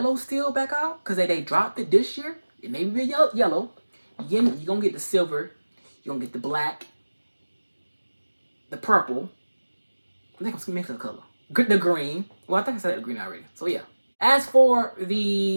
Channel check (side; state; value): both; inverted; correlation -1.00